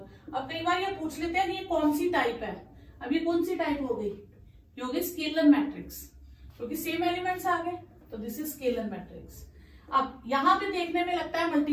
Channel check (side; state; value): both; identical; correlation 1.00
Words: अब कई बार ये पूछ लेते हैं ये कौन सी टाइप है, अब ये कौन सी टाइप हो गई? ये हो गई स्केलर मैट्रिक्स, क्योंकि सेम एलिमेंट्स आ गए, तो दिस इज स्केलर मैट्रिक्स। अब यहाँ पे देखने में लगता है